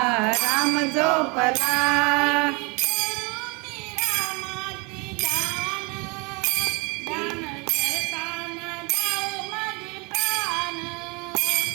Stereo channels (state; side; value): quieter; left; 29.4 dB